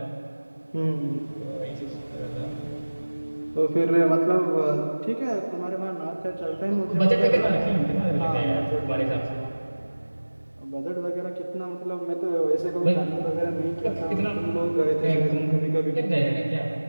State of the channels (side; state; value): both; inverted; correlation -1.00